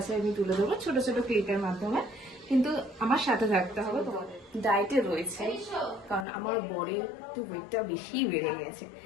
আমি তুলে দেবো ছোট ছোট ক্লিপের মাধ্যমে। কিন্তু আমার সাথে থাকতে হবে। তোমাদের ডায়েটে রয়েছে, কারণ আমার বরের একটু ওয়েটটা বেশি বেড়ে গেছে।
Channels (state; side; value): drops out; right; at 6.2 s